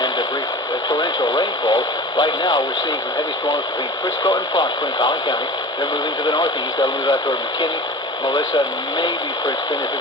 brief torrential rainfall. Right now, we're seeing some heavy storms between Frisco and Prosper in Collin County. They're moving to the northeast. They'll move out toward McKinney, Melissa, maybe Princeton if it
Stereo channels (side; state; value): both; normal; correlation 0.36